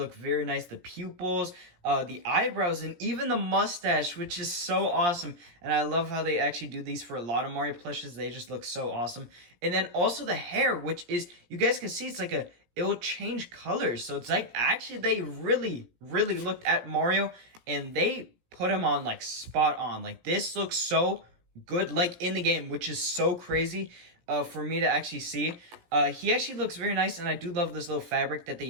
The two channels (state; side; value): late; left; 17 ms